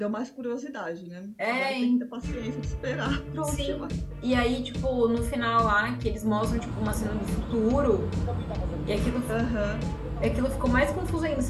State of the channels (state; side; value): identical; both; correlation 1.00